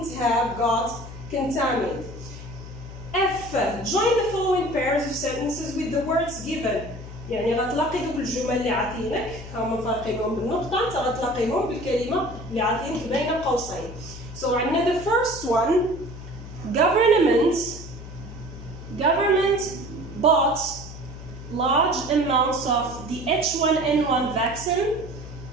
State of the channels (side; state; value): left; noise; hum, 13 dB below the sound